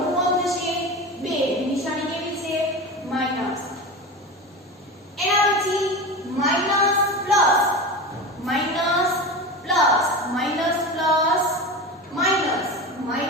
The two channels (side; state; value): both; normal; correlation 0.27